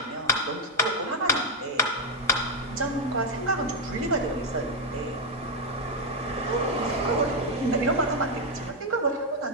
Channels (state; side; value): normal; both; correlation 0.02